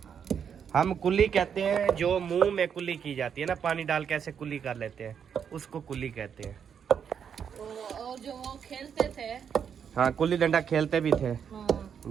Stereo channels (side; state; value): left; quieter; 7.6 dB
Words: हम कुल्ली कहते हैं जो मुंह में कुल्ली की जाती है ना, पानी डाल के ऐसे कुल्ली कर लेते हैं, उसको कुल्ली कहते हैं। और जो वो खेलते थे, हाँ कुल्ली डंडा खेलते भी थे। हाँ,